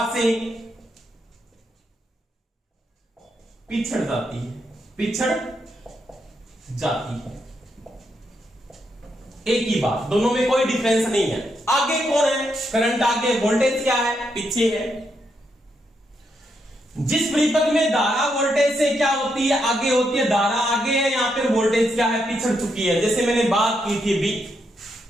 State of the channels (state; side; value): normal; both; correlation 0.80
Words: से पिछड़ जाती है, पिछड़ जाती है। एक ही बात, दोनों में कोई डिफरेंस नहीं है। आगे कौन है? करंट आगे, वोल्टेज क्या है? पीछे है। जिस परिपथ में धारा वोल्टेज से क्या होती है? आगे होती है। धारा आगे है, यहां पर वोल्टेज क्या है? पिछड़ चुकी है। जैसे मैंने बात की थी अभी